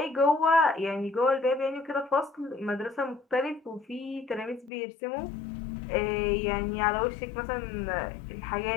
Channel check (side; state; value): right; drops out; at 4.7 s